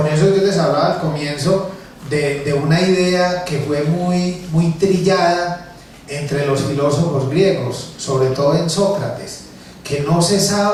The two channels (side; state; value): both; identical; correlation 1.00